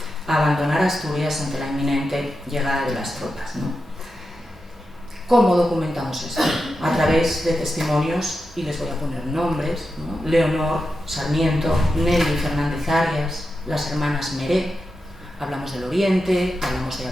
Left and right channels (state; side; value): normal; both; correlation 0.89